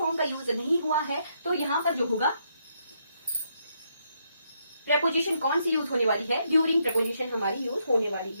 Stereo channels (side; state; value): both; inverted; correlation -0.76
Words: का यूज नहीं हुआ है, तो यहाँ पर जो होगा प्रपोजिशन कौन सी यूज होने वाली है, ड्यूरिंग प्रपोजिशन हमारी यूज होने वाली